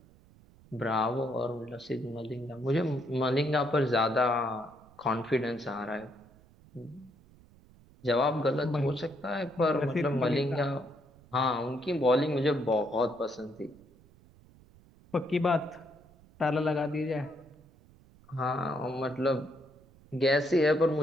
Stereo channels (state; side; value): noise; right; rumble, 26 dB below the sound